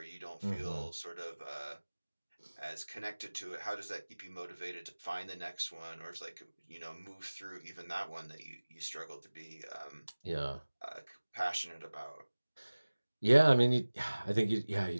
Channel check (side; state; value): both; inverted; correlation -1.00